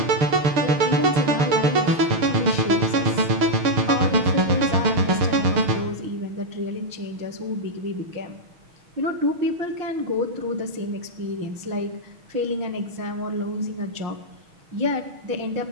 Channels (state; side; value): late; left; 6.4 ms